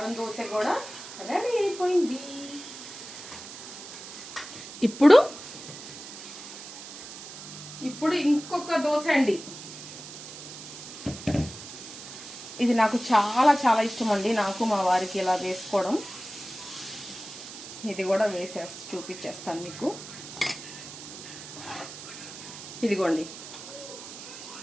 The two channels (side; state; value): right; noise; hiss, 12 dB below the sound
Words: దోశ కూడా రెడీ అయిపోయింది. ఇప్పుడు ఇప్పుడు ఇంకొక దోశ అండి. ఇది నాకు చాలా చాలా ఇష్టం అండి, నాకు మా వారికి ఇలా వేసుకోవడం. ఇది కూడా చూపించేస్తాను మీకు. ఇదిగోండి,